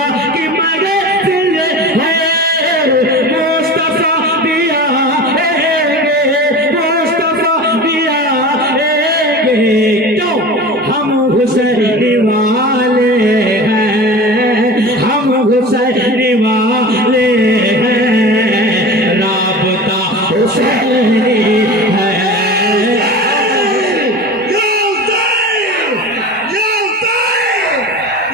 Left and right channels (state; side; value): normal; both; correlation 0.34